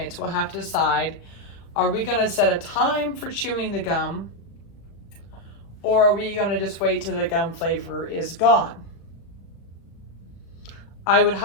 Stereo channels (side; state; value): right; late; 36 ms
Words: will have to decide, are we going to set a time for chewing the gum, or are we going to just wait till the gum flavor is gone? I would